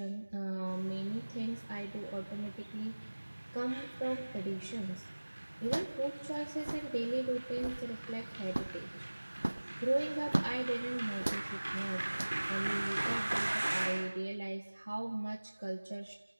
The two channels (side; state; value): both; inverted; correlation -1.00